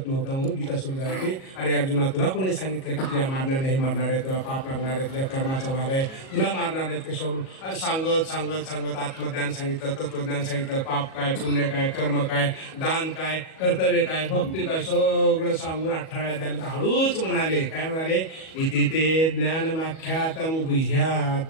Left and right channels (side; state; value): right; late; 37 ms